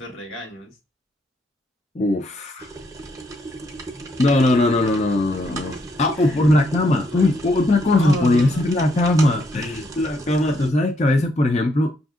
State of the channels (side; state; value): both; normal; correlation 0.74